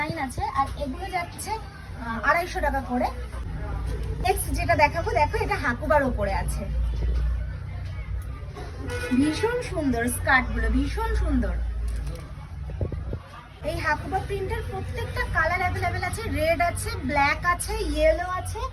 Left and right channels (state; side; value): identical; both; correlation 1.00